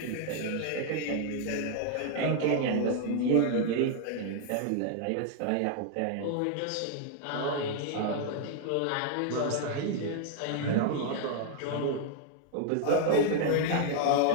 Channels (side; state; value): both; different; correlation 0.00